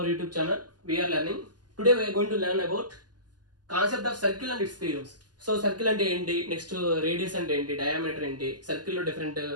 YouTube channel. We are learning. Today we are going to learn about concept of circle and its theorems. So circle ante enti, next radius ante enti, diameter enti, circle lo different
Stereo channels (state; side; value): late; left; 0.70 ms